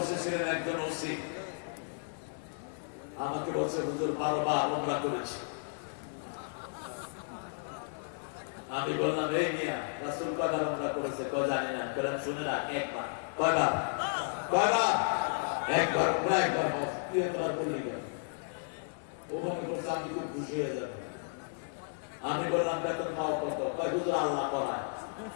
একজন ওসি। আমাকে বলছে হুজুর 12 বার ওমরা করেছি। আমি বললাম এই মিয়া রাসূল কয়বার ওমরা করেছে? কয় জানি না। বললাম শুনে রাখ, একবার। কয়বার? কয়বার? একবার। ওমরা একবার হজ, 3 বার বলেই গেল। ও মনে করছে আমি খুব খুশি হয়ে যাবো। আমি বললাম বেতন পাও কত? কয় হুজুর আল্লাহ করায়।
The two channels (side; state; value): right; silent; 56 dB below the other